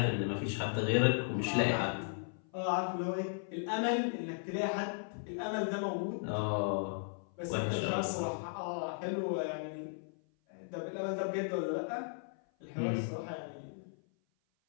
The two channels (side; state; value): right; silent; 54 dB below the other